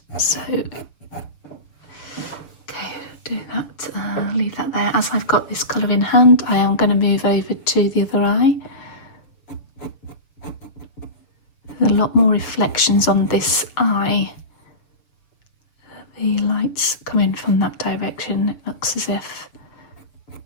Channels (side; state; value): right; late; 6.8 ms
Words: So do that, leave that there. As I've got this colour in hand, I am going to move over to the other eye. There's a lot more reflections on this eye. The lights come in from that direction. It looks as if